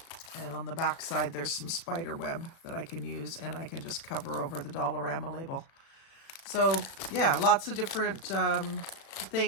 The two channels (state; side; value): late; right; 36 ms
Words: And on the back side, there's some spider web that I can use, and I can just cover over the Dollarama label. So yeah, lots of different